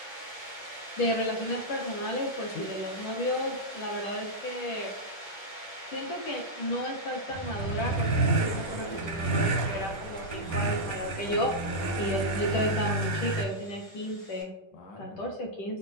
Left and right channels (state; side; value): late; right; 10 ms